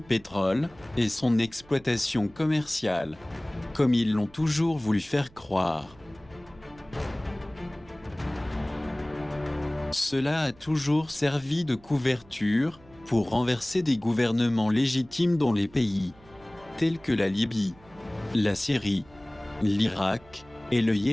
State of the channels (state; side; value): noise; right; hum, 25 dB below the sound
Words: et son exploitation commerciale, comme ils l'ont toujours voulu faire croire. Cela a toujours servi de couverture, pour renverser des gouvernements légitimes dans les pays, tels que la Libye, la Syrie, l'Irak et le